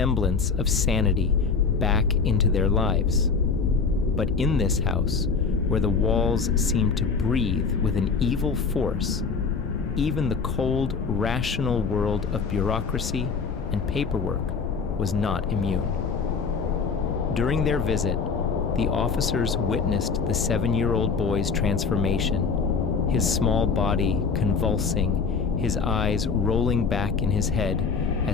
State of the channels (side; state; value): right; quieter; 5.2 dB